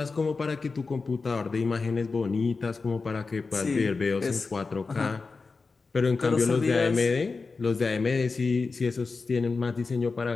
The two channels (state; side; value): quieter; right; 4.3 dB